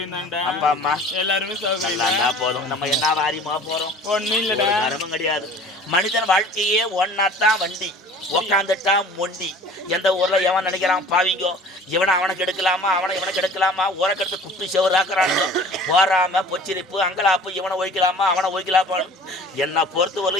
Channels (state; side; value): normal; both; correlation 0.46